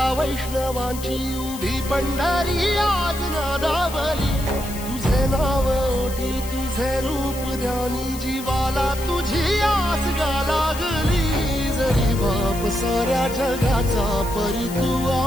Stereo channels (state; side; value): noise; left; hiss, 13 dB below the sound